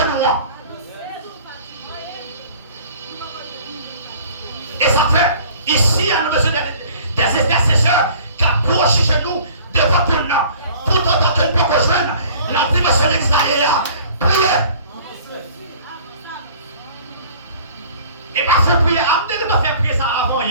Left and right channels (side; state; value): both; inverted; correlation -0.49